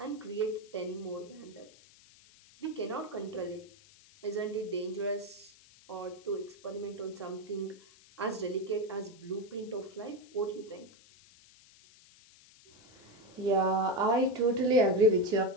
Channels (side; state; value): left; noise; hiss, 25 dB below the sound